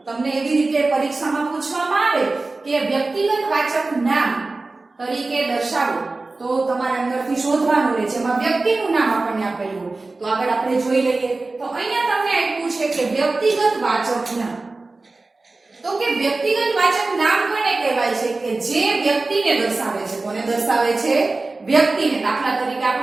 તમને એવી રીતે પરીક્ષામાં પૂછવામાં આવે કે વ્યક્તિગત વાચક નામ તરીકે દર્શાવો તો તમારે અંદરથી શોધવાનું રહે છે। એમાં વ્યક્તિનું નામ આપણને આપેલું હોય તો આગળ આપણે જોઈ લઈએ તો અહીંયા તમને આપ્યું છે કે વ્યક્તિગત વાચક નામ। તો કે વ્યક્તિગત વાચક નામ કોને કહેવાય છે? કે જે વ્યક્તિને દર્શાવે છે। કોને દર્શાવે છે? વ્યક્તિને। દાખલા તરીકે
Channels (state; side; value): quieter; left; 3.4 dB